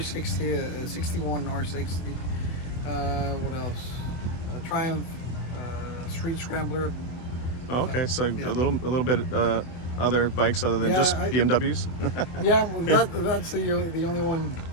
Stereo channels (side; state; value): right; late; 24 ms